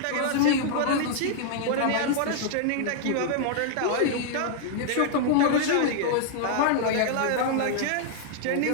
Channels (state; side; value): different; both; correlation -0.01